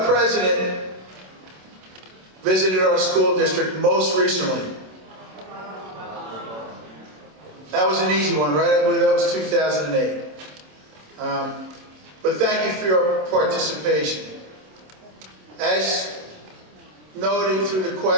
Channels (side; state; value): left; late; 27 ms